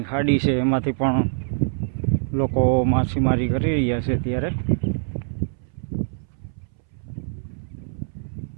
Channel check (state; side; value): silent; left; 61 dB below the other